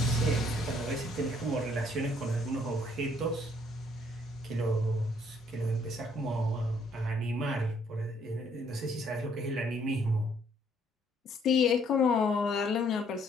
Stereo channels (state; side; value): normal; both; correlation 0.65